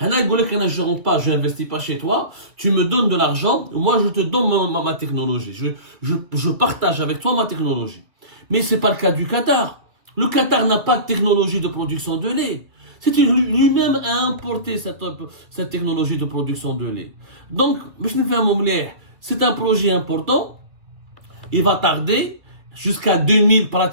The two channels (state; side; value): late; left; 2.5 ms